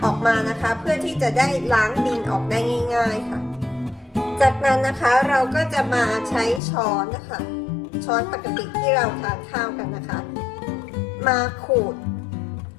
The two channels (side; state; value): right; drops out; at 6.6 s